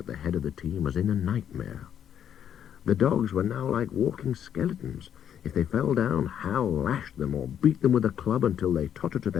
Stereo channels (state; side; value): quieter; right; 9.3 dB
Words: the head of the team as in a nightmare. The dogs were now like walking skeletons. If they fell down, Hal lashed them or beat them with a club until they tottered to